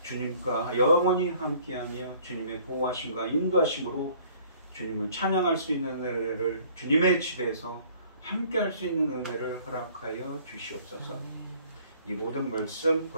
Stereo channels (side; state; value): both; inverted; correlation -0.55